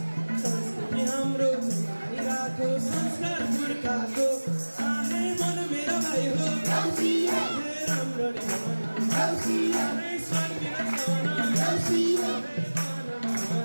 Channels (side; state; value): both; inverted; correlation -1.00